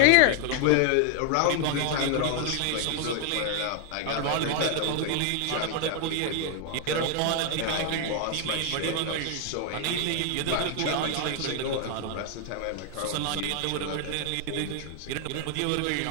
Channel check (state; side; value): different; both; correlation 0.00